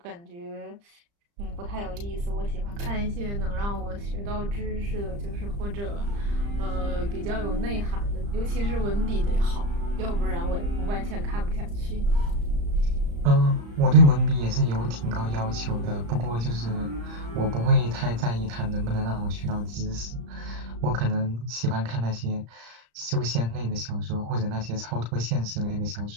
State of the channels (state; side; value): late; left; 35 ms